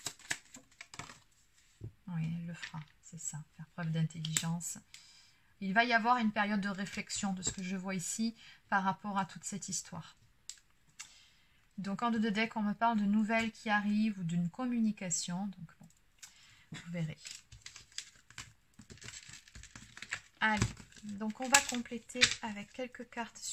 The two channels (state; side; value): identical; both; correlation 1.00